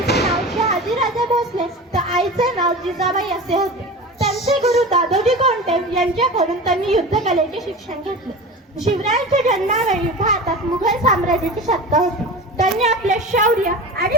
नाव शहाजीराजे भोसले तर आईचे नाव जिजाबाई असे होते। त्यांचे गुरु दादोजी कोंडदेव यांच्याकडून त्यांनी युद्धकलेचे शिक्षण घेतले। शिवरायांच्या जन्मावेळी भारतात मुघल साम्राज्याची सत्ता होती। त्यांनी आपल्या शौर्य आणि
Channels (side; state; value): both; normal; correlation 0.32